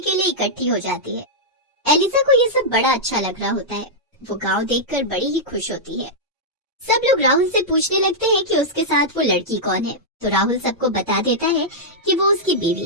लिए इकट्ठी हो जाती है। एलिजा को ये सब बड़ा अच्छा लग रहा होता है। वो गांव देखकर बड़ी ही खुश होती है। सब लोग राहुल से पूछने लगते हैं कि उसके साथ वो लड़की कौन है, तो राहुल सबको बता देता है कि वो उसकी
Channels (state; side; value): normal; both; correlation -0.08